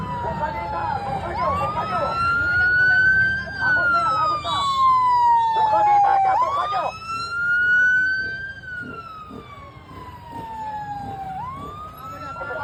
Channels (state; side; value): identical; both; correlation 1.00